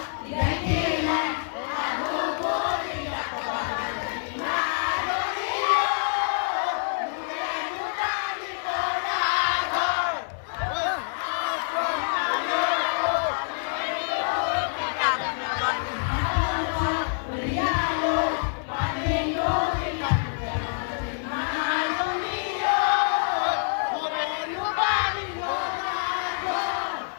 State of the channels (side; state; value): right; silent; digital silence